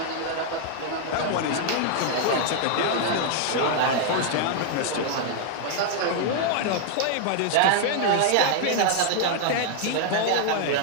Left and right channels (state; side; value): different; both; correlation 0.00